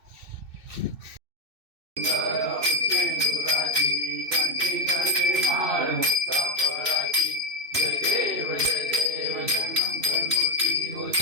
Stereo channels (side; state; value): left; late; 2.6 ms